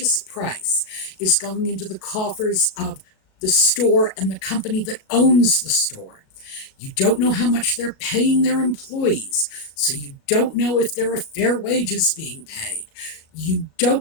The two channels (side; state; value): right; late; 37 ms